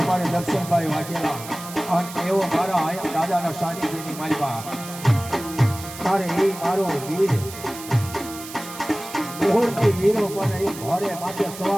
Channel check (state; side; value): noise; right; hiss, 13 dB below the sound